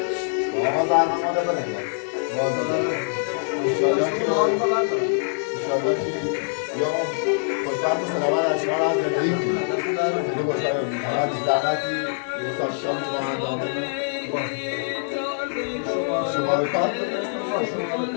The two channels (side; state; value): right; silent; 58 dB below the other